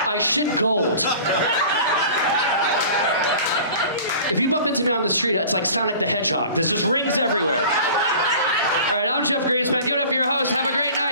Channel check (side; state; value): both; inverted; correlation -0.43